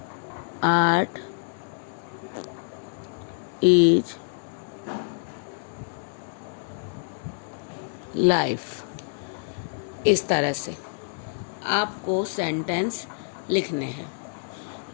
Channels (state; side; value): silent; right; digital silence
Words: आर्ट इज लाइफ। इस तरह से आपको सेंटेंस लिखने हैं।